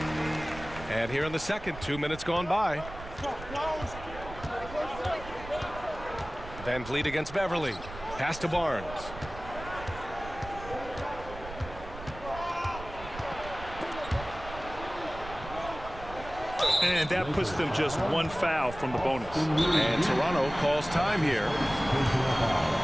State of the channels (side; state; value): right; noise; rumble, 13 dB below the sound